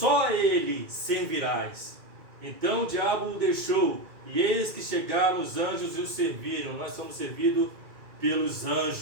a ele servirás. Então o diabo o deixou, e eis que chegaram os anjos e o serviram. Nós somos servidos pelos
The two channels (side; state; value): left; late; 2.4 ms